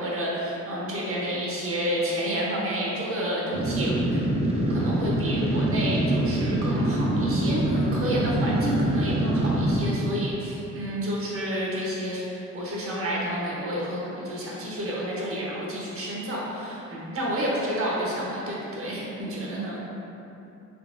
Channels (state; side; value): normal; both; correlation 0.45